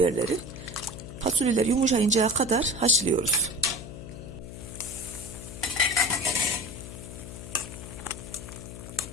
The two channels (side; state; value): left; noise; hum, 11 dB below the sound